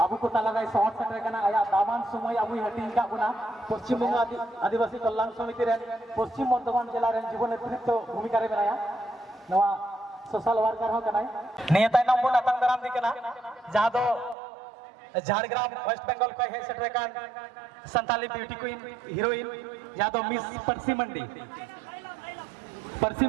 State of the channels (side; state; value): left; drops out; at 14.4 s